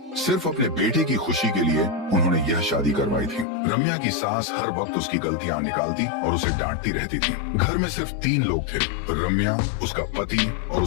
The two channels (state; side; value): drops out; right; at 3.5 s